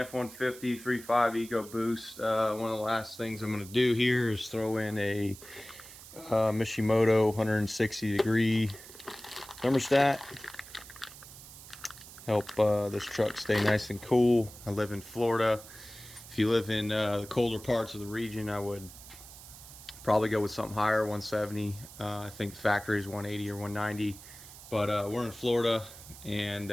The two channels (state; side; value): noise; right; hiss, 17 dB below the sound